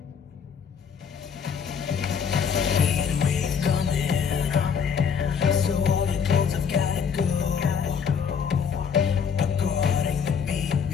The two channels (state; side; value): quieter; right; 6.9 dB